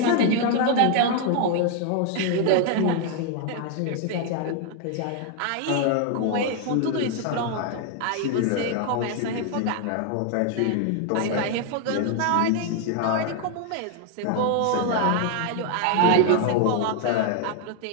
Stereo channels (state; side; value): different; both; correlation 0.00